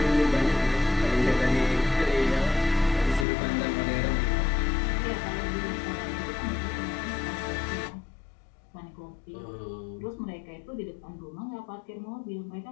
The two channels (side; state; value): right; drops out; at 3.2 s